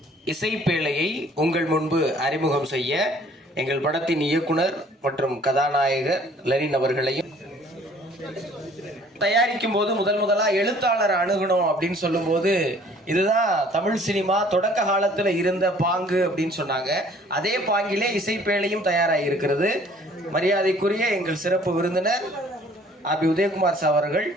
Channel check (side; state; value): both; normal; correlation 0.55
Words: இசைப்பேழையை உங்கள் முன்பு அறிமுகம் செய்ய எங்கள் படத்தின் இயக்குனர் மற்றும் கதாநாயகர் லெனின் அவர்களையும் தயாரிக்கும் போது முதலா எழுத்தாளர் அணுகணும் அப்படின்னு சொல்லும் போது இதுதான் தமிழ் சினிமா தொடக்க காலத்துல இருந்த பாங்கு அப்படின்னு சொன்னாங்க. அதே பாங்கிலே இசைப்பேழையும் தயாராகி இருக்கிறது. மரியாதைக்குரிய எங்கள் சிறப்பு விருந்தினர் ஆபி உதயகுமார் சார் அவர்கள்